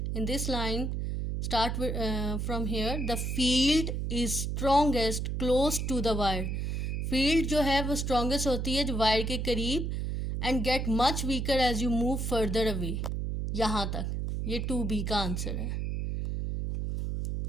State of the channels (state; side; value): noise; right; hum, 1 dB below the sound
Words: In this line start from here. The field is strongest close to the wire. Field जो है वो strongest होती है जो wire के करीब, and get much weaker as you move further away. यहाँ तक ये 2B का आंसर है.